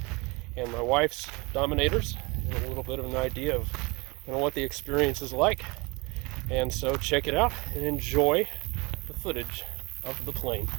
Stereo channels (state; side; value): quieter; left; 26.4 dB